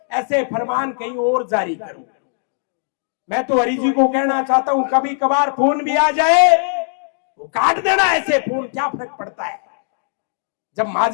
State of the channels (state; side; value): silent; right; digital silence